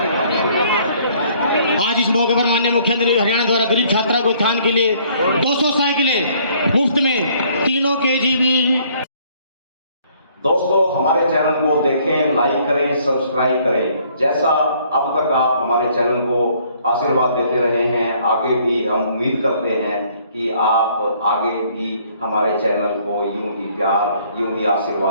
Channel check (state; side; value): inverted; both; correlation -0.62